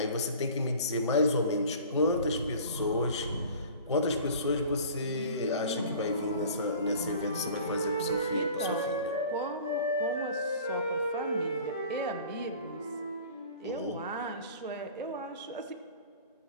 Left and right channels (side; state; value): both; inverted; correlation -0.44